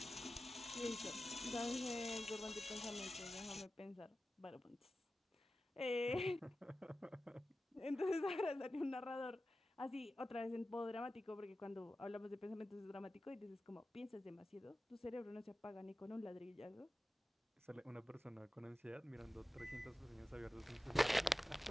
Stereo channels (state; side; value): normal; both; correlation 0.94